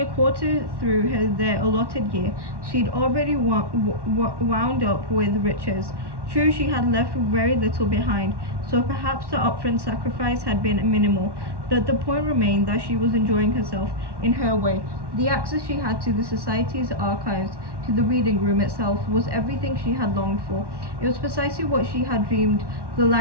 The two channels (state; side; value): late; left; 1.1 ms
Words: a quarter through their allotted year, she'd already wound up with riches. True, she had left very little behind, so perhaps the upfront sacrifice had been minimal, but the point remained that she was enjoying herself in her way. The access she had to the society's archives, to the reading room itself, was everything she had longed for. It was precisely what she had dreamed the